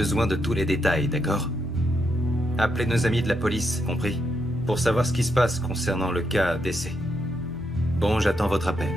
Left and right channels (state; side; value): normal; both; correlation 0.79